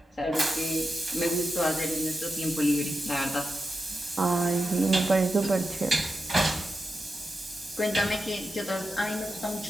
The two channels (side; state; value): both; normal; correlation 0.90